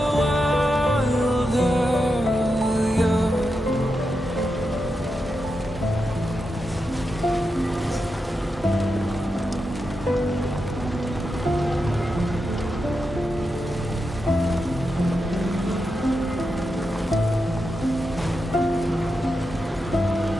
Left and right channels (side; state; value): both; normal; correlation 0.87